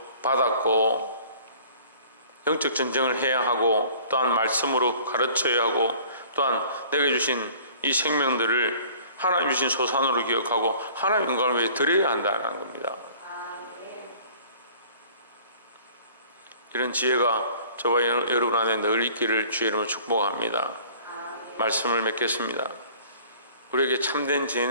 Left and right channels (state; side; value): inverted; both; correlation -0.50